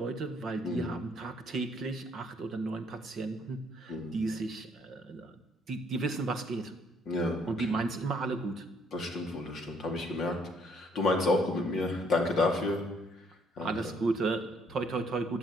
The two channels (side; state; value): both; normal; correlation 0.65